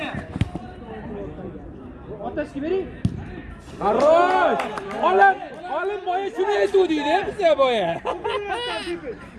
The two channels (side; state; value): both; identical; correlation 1.00